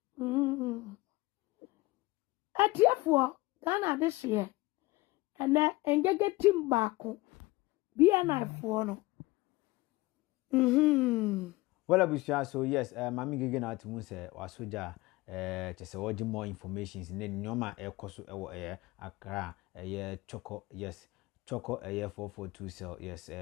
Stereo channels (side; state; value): right; quieter; 21.0 dB